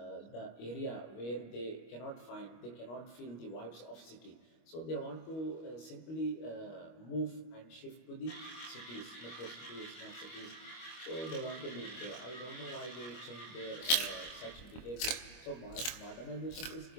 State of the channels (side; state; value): right; late; 25 ms